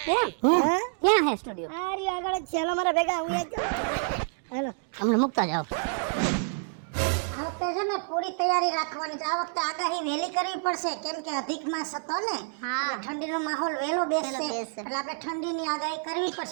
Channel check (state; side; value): silent; left; 58 dB below the other